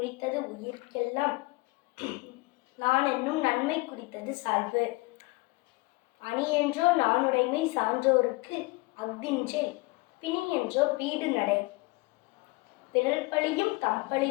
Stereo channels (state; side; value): quieter; right; 23.8 dB